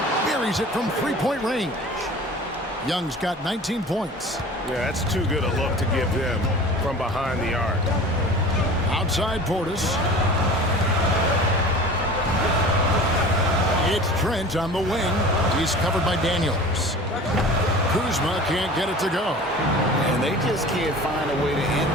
buries it from 3-point range. Young's got 19 points. Yeah, that's too good a look to give them from behind the arc. Outside Portis. It's Trent on the wing. He's covered by Daniels. Kuzma can't get it to go. And they just can't find a way to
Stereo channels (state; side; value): normal; both; correlation 0.40